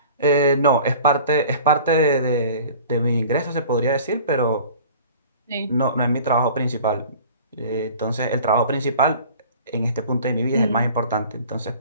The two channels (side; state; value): both; inverted; correlation -0.46